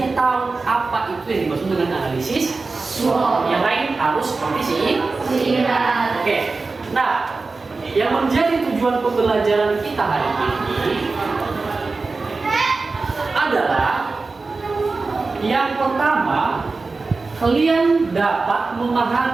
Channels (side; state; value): left; quieter; 3.9 dB